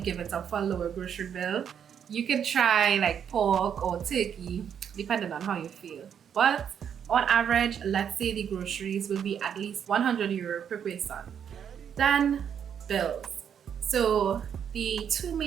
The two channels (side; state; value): left; quieter; 8.3 dB